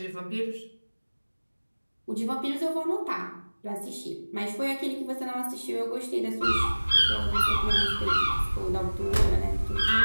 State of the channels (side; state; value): both; inverted; correlation -1.00